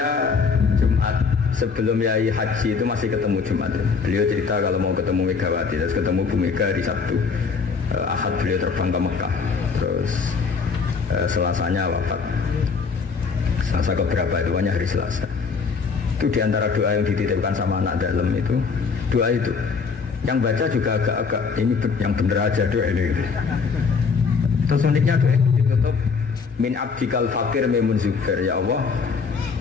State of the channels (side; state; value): right; quieter; 5.3 dB